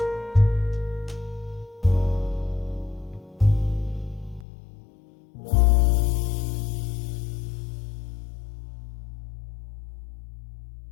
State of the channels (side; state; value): right; drops out; at 4.5 s